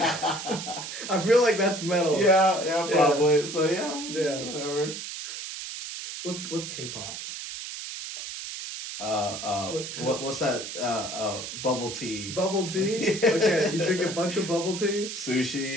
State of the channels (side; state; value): right; noise; hiss, 8 dB below the sound